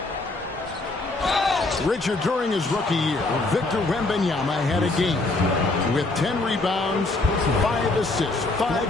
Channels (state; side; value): quieter; right; 3.1 dB